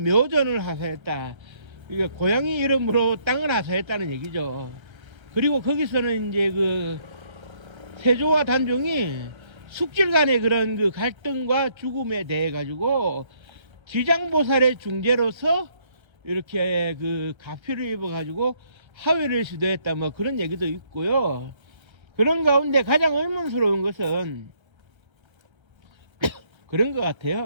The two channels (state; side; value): late; left; 1.3 ms